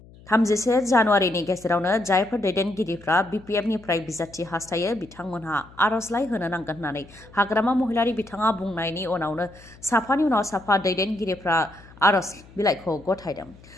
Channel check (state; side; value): noise; left; hum, 23 dB below the sound